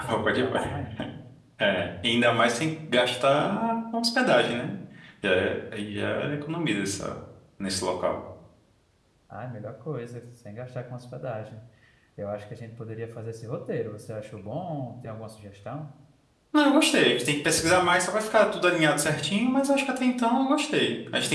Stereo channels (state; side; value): identical; both; correlation 1.00